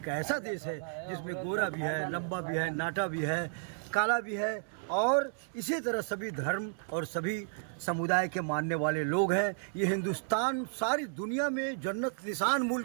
ऐसा देश है जिसमें गोरा भी है, लंबा भी है, नाटा भी है, काला भी है, और इसी तरह सभी धर्म और सभी समुदाय के मानने वाले लोग हैं। ये हिंदुस्तान सारी दुनिया में जन्नत निशान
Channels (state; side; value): silent; left; 56 dB below the other